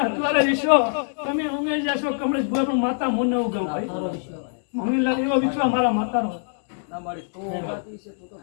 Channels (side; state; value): right; silent; digital silence